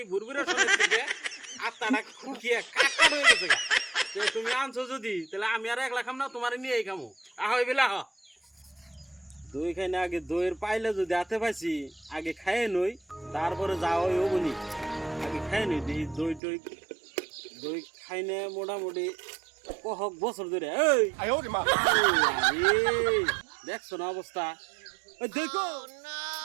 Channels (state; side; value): drops out; left; at 16.4 s